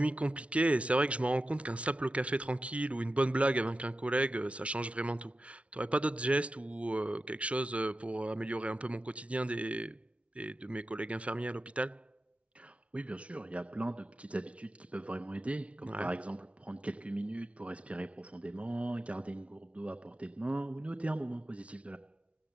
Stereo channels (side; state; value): left; late; 0.062 ms